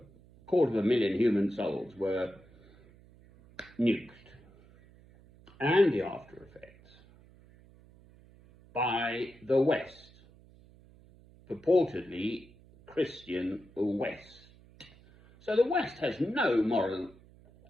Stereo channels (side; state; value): right; noise; hum, 25 dB below the sound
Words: 250,000 human souls were nuked. And the after effects by the West, purportedly Christian West. So the West has no